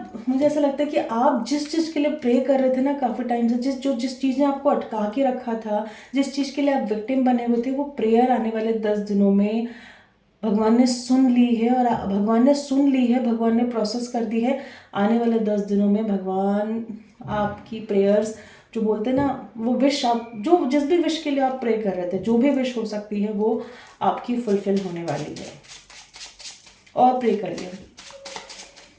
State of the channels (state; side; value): identical; both; correlation 1.00